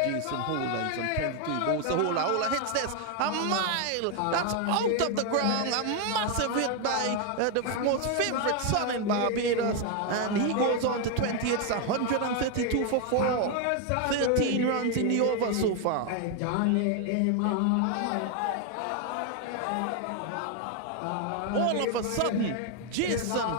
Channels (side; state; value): both; different; correlation 0.01